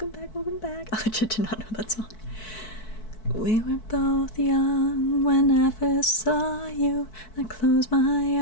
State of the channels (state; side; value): late; right; 4.6 ms